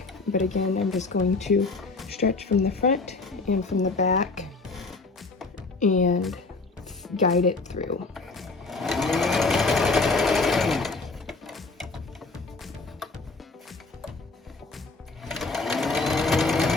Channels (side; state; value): right; quieter; 3.7 dB